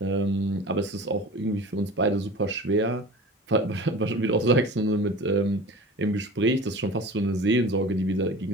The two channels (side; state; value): both; normal; correlation 0.37